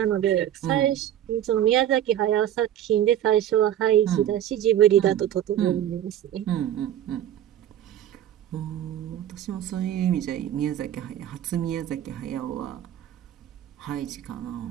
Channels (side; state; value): left; quieter; 11.2 dB